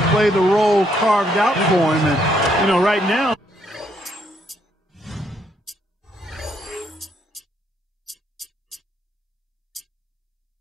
play the role carved out for him. And, right now,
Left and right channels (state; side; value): normal; both; correlation 0.72